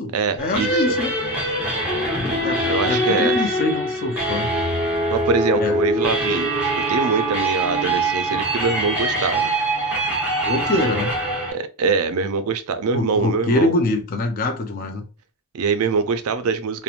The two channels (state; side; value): normal; both; correlation 0.18